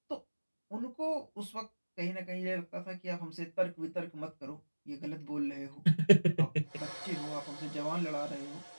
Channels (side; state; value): both; inverted; correlation -1.00